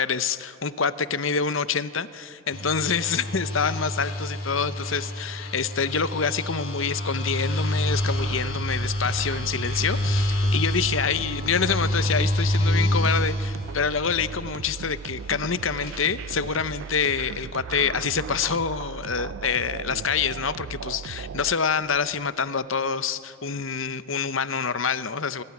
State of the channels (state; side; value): quieter; right; 3.7 dB